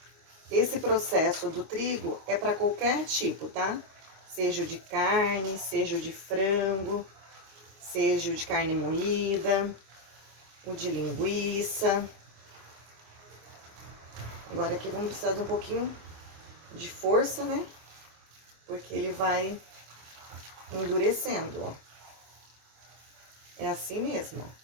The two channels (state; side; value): late; left; 26 ms